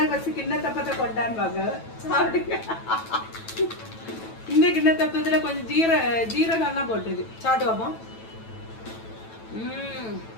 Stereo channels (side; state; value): right; late; 9.1 ms